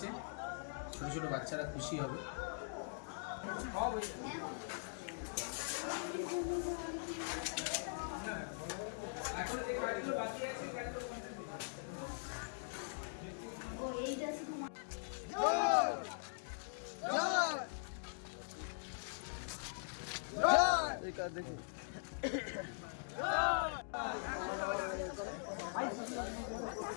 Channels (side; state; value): right; silent; digital silence